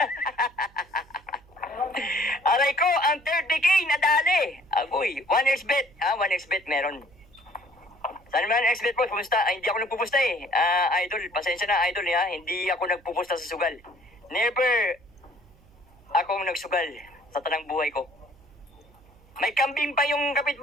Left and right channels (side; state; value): right; noise; hum, 27 dB below the sound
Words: Aray ko, ang 30K nadali. Agoy, 1xbet. 1xbet meron. Saan naman ang xbet po? Kumusta? Hindi ako nagpupusta eh. Idol, pasensya na idol ha. Hindi ako nagpupusta sa sugal. Never akong nagsugal sa tanang buhay ko. May kambing pa yung